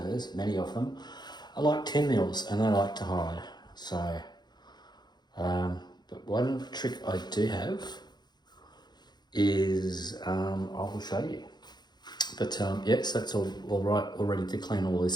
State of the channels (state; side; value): late; right; 0.21 ms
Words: many of them, are like 10 mils and they like to hide. So, but one trick I do have is, I will show you. But yes, that's all right, all ready to clean all